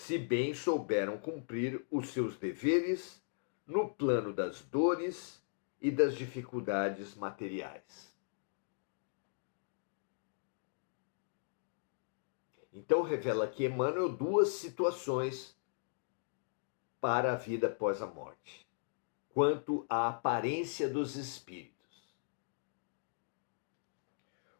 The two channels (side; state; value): right; silent; digital silence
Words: bem souberam cumprir os seus deveres no plano das dores e das dificuldades materiais. Então revela aqui Emmanuel duas situações para a vida após a morte, quanto à aparência dos espíritos.